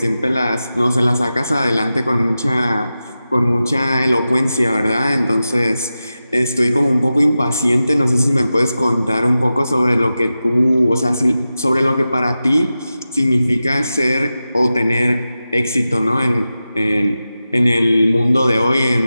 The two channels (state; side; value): inverted; both; correlation -0.93